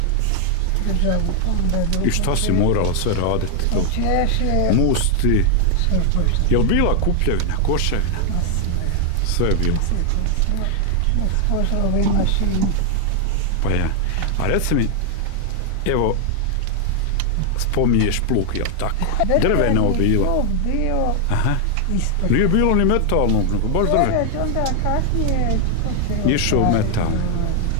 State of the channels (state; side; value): different; both; correlation 0.00